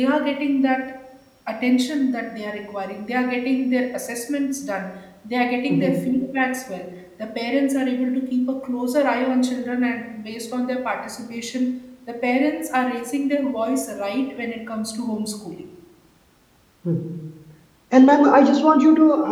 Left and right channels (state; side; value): identical; both; correlation 1.00